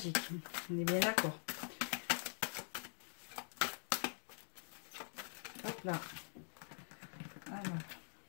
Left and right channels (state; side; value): silent; right; digital silence